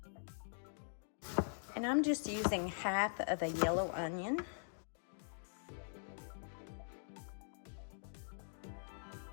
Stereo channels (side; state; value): right; silent; digital silence